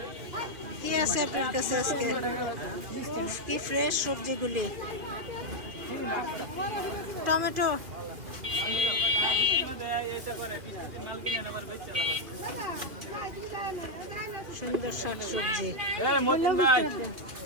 কি আছে আপনার কাছে আজকে? উফ, কি ফ্রেশ সবজিগুলি। টমেটো, সুন্দর শাক সবজি,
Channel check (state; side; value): late; left; 2.8 ms